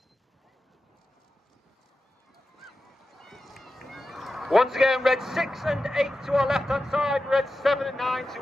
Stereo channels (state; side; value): normal; both; correlation 0.92